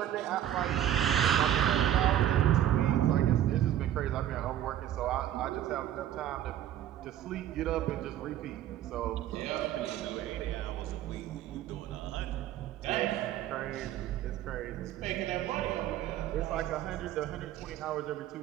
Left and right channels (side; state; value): left; quieter; 11.6 dB